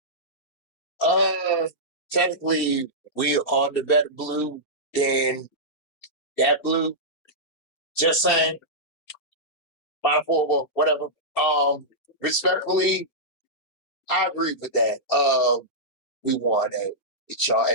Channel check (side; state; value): right; late; 4.3 ms